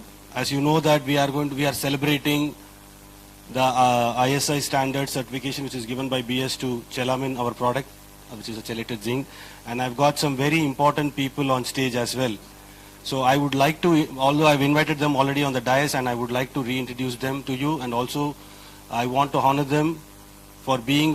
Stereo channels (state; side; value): identical; both; correlation 1.00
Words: you know that we are celebrating the ISI standard certification which is given by BS to Chelamin, our product, which is a chelated zinc. And I've got some very important people on stage as well. So I would like to, although I've invited them already on the dais, and I would like to reintroduce them to you, and also I want to honor them for being